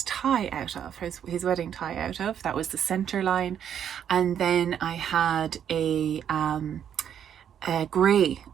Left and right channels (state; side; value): quieter; left; 9.1 dB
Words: tie out of, his wedding tie out of. That was the centre line. And then I had a grey,